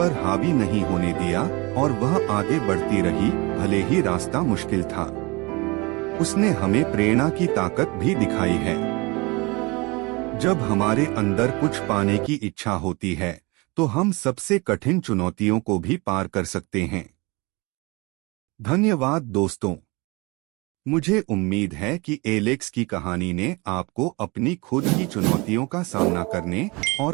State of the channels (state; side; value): quieter; left; 26.1 dB